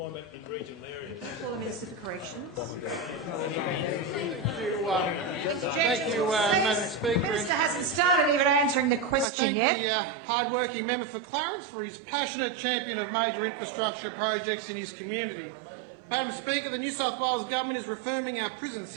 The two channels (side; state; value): left; drops out; at 9.2 s